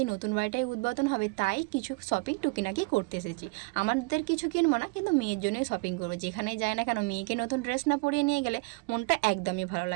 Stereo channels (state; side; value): quieter; left; 29.1 dB